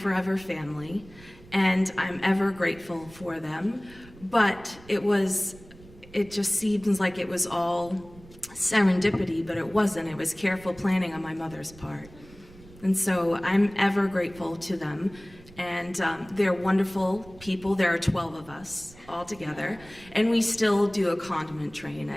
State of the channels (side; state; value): right; noise; rumble, 21 dB below the sound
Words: family, and I'm ever grateful for them. But it just seems like it was all serendipity, but it wasn't. It was careful planning on my mother's part. And so I'm ever grateful to them. And they're wonderful people. There are 12 of us all together, and we still do a condiment train